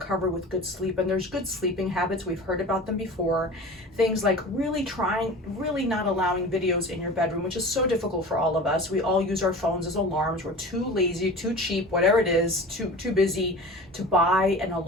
with good sleep. And there's good sleeping habits. We've heard about them before. Things like really not allowing videos in your bedroom, which is so difficult for all of us. We all use our phones as alarms. We're too lazy, too cheap, whatever it is, too busy to buy an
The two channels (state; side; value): normal; both; correlation 0.36